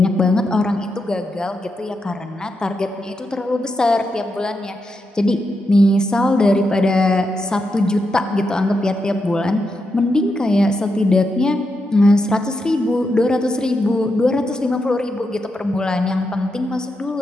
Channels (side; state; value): both; normal; correlation 0.85